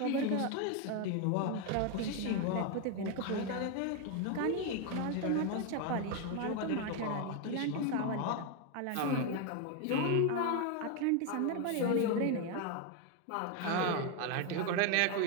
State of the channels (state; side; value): different; both; correlation 0.01